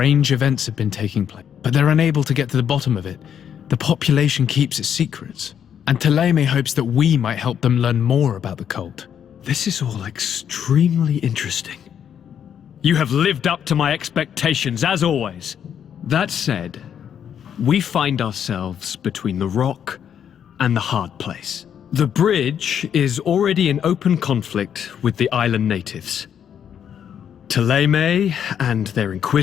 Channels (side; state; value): right; quieter; 8.7 dB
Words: events have been taking place, but they're unable to get to the bottom of it. The population keeps its secrets, and Ptolemy hopes that we might help them learn more about the cult. This is all extremely interesting. You have lived up to my expectations, as always. That said, we find ourselves between the rock and the hard place. The bridge is already in open conflict with the island natives. Ptolemy and their